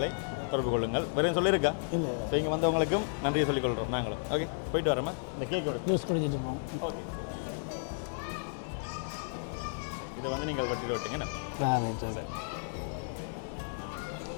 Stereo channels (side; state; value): right; silent; digital silence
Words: தொடர்பு கொள்ளுங்கள். வேறு சொல்லியிருக்கா? ஸோ இங்கே வந்தவங்களுக்கும் நன்றியை சொல்லிக்கொள்கிறோம் நாங்களும். ஓகே, போயிட்டு வரோமா? இந்த கேக் எடுத்து ஓகே. இதை வந்து நீங்கள் கட்டிட்டு விட்டீங்க சார்.